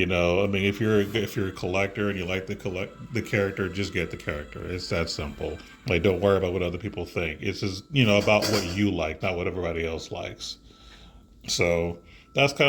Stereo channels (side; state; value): both; identical; correlation 1.00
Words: you're a collector and you like the character, just get the character. It's that simple. Like, don't worry about what other people think. It's just, about what you like, not what everybody else likes. So that's